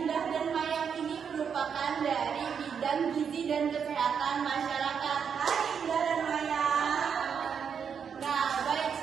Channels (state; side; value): quieter; left; 7.0 dB